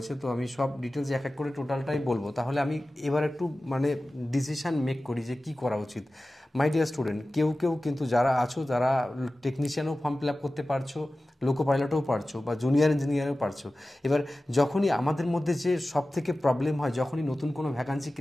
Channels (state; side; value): normal; both; correlation 0.96